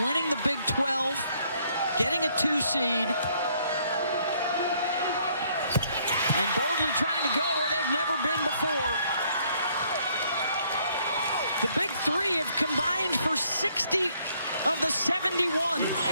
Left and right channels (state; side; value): inverted; both; correlation -0.67